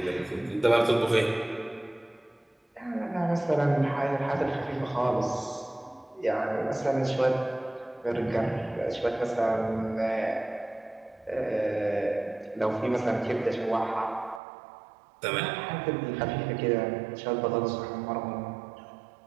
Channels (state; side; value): drops out; left; at 14.4 s